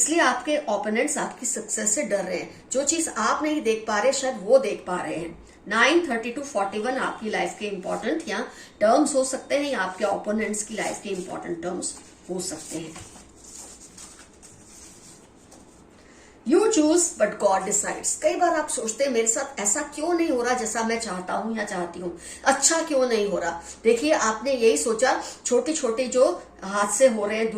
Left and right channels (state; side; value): identical; both; correlation 1.00